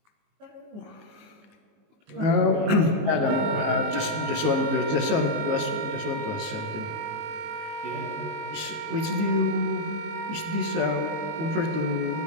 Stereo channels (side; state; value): left; late; 19 ms